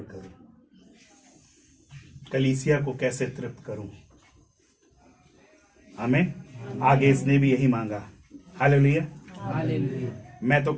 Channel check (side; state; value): both; identical; correlation 1.00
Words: करूं, कलीसिया को कैसे तृप्त करूं। आमीन। आगे इसने भी यही मांगा। हालेलुया। मैं तो